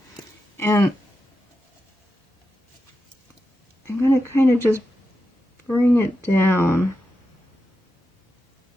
and I'm going to kind of just bring it down.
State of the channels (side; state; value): both; normal; correlation 0.89